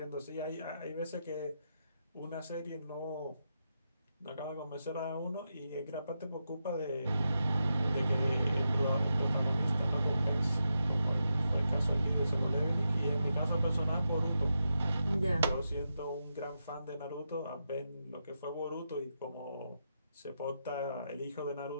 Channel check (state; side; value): inverted; both; correlation -0.86